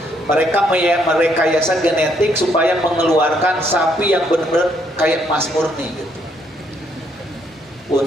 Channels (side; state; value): both; normal; correlation 0.71